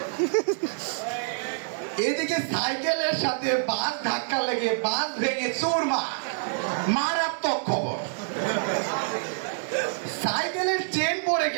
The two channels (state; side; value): silent; left; digital silence